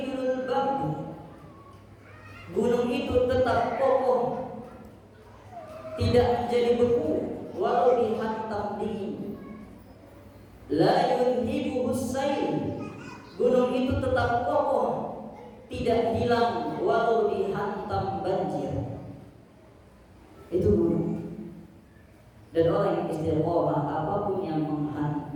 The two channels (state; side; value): identical; both; correlation 1.00